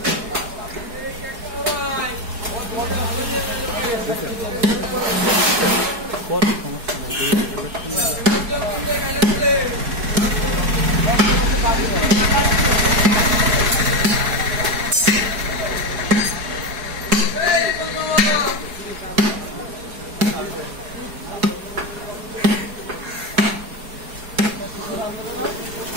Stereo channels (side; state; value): left; late; 4.7 ms